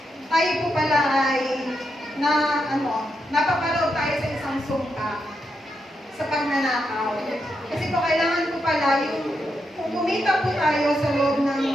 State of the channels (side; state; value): both; normal; correlation 0.83